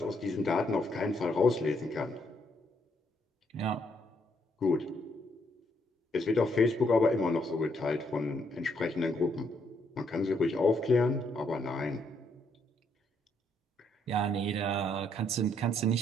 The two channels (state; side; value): normal; both; correlation 0.73